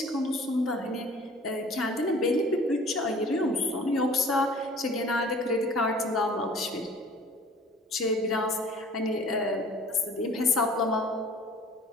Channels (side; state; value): both; normal; correlation 0.49